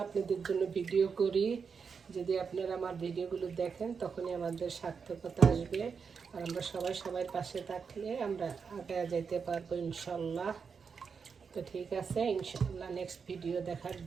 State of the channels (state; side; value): quieter; left; 5.8 dB